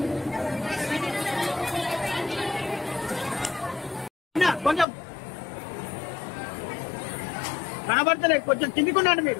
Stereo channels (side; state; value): right; drops out; at 4.9 s